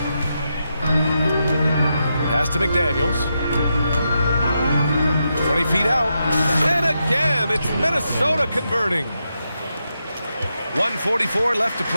Pass to McDaniels. 20 feet out. And again, it's Minnesota converting. 1:44 left to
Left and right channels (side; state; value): both; inverted; correlation -0.85